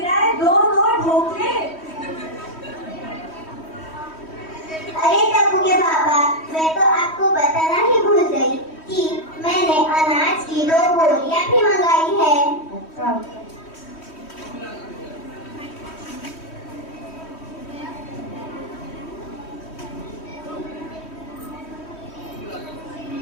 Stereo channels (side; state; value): right; late; 3.1 ms